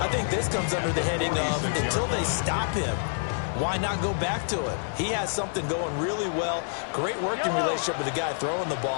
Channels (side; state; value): right; silent; digital silence